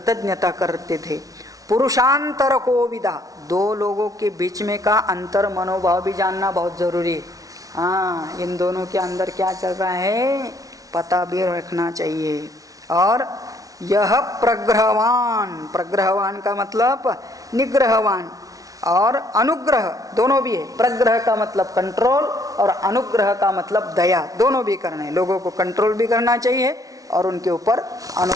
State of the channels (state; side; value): late; left; 0.18 ms